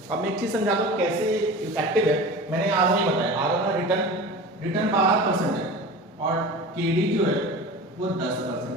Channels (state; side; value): normal; both; correlation 0.34